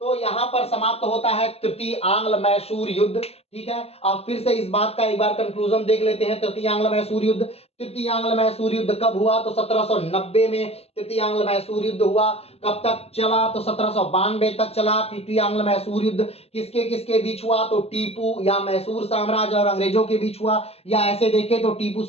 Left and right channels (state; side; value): late; right; 0.29 ms